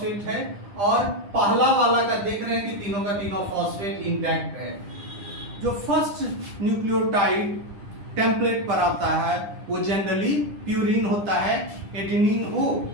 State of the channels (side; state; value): left; late; 10 ms